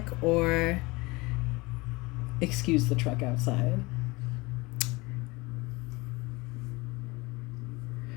or excuse the truck outside,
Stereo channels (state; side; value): quieter; right; 23.7 dB